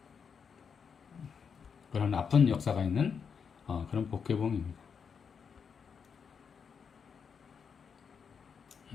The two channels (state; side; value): quieter; right; 6.4 dB